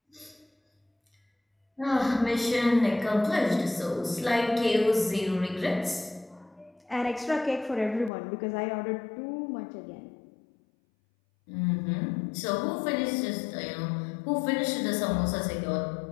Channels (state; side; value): drops out; right; at 8.1 s